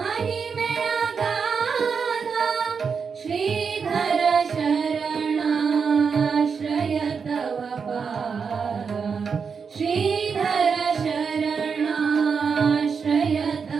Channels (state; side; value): quieter; left; 5.9 dB